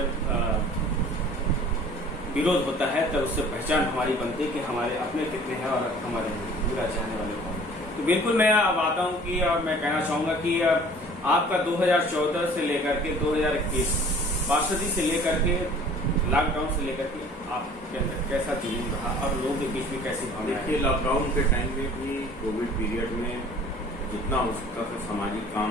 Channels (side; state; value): both; normal; correlation 0.49